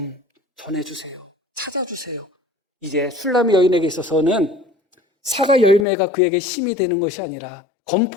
전해주세요. 찾아주세요. 이제 슐라미 여인에게 있어서는 사과 열매가 그에게 힘이 되는 것이 아니라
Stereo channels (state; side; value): drops out; right; at 5.9 s